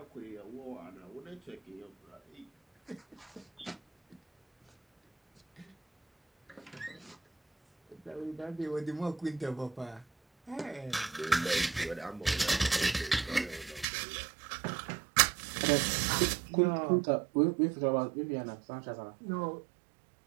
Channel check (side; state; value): left; drops out; at 13.9 s